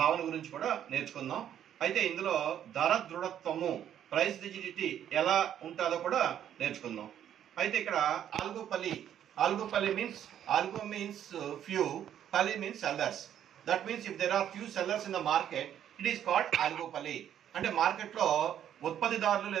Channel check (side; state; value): left; quieter; 10.2 dB